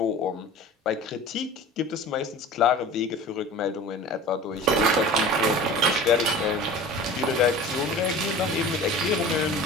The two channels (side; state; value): both; normal; correlation 0.40